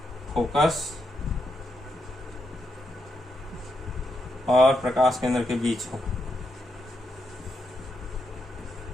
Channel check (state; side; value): normal; both; correlation 0.82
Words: फोकस और प्रकाश केंद्र के बीच हो,